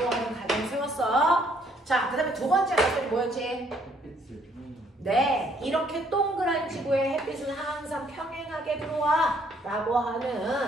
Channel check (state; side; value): normal; both; correlation 0.66